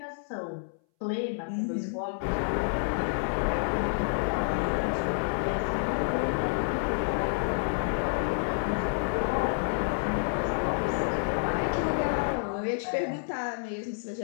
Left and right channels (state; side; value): silent; right; 59 dB below the other